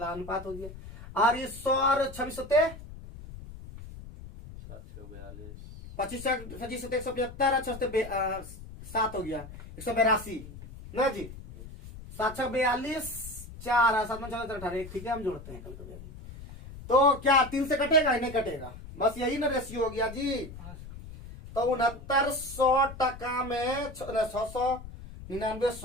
हो गया। और ये 100 और 26 25 25 175 और 7 हो गया 182 ना जी। 7 42 4 7 14 18। ठीक है, हम जोड़ते हैं कल कभी। तो क्या 3 से कटेगा? नहीं कटेगा, बस यही ना रेशियो हो गया जी। तो 6900 टका में 699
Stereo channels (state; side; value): noise; left; rumble, 14 dB below the sound